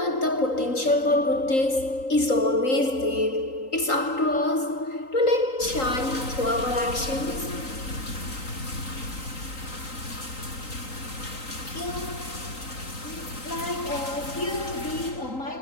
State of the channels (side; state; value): right; late; 3.8 ms